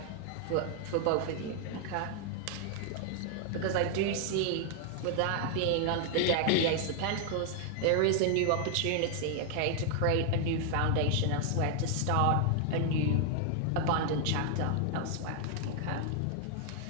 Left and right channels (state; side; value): different; both; correlation 0.00